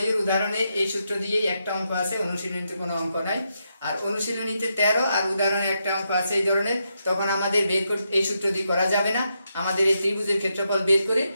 উদাহরণে এই সূত্র দিয়েই একটা অঙ্ক আছে, অনুশীলনীতে কোনো অঙ্ক নাই। আর অনুশীলনীতে 13 আর উদাহরণে একটা অঙ্ক আছে এই ধরনের, তখন আমাদের এই সূত্র দিয়ে করা যাবে না, আমাদের এই ত্রিভুজের ক্ষেত্রফল বের করে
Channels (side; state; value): both; inverted; correlation -0.82